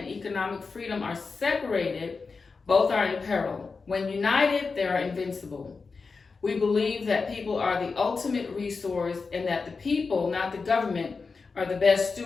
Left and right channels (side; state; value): right; quieter; 4.6 dB